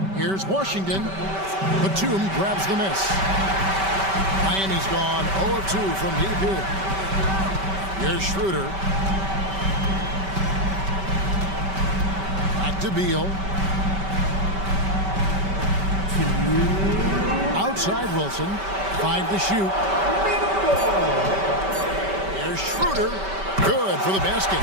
here's Washington. Batum grabs the miss. Miami's gone 0 of 2 from deep here. Here's Schroeder. Back to Beal. Outside Wilson. 5 to shoot. Here's Schroeder. Good for the basket.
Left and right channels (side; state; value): left; late; 5.2 ms